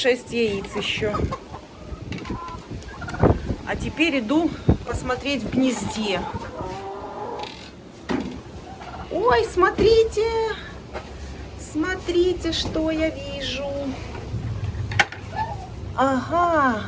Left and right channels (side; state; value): both; identical; correlation 1.00